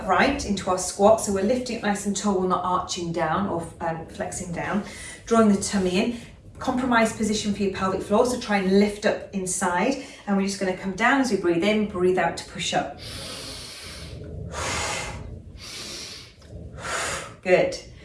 into our squat, so we're lifting it nice and tall, we're not arching down or flexing down. Drawing the tummy in. Compromised position for your pelvic floor, so try and lift up inside, and we're just going to come down as we breathe in, breathe out to push up. Good.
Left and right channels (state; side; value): identical; both; correlation 1.00